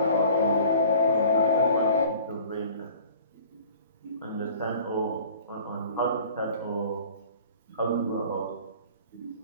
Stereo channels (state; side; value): inverted; both; correlation -0.48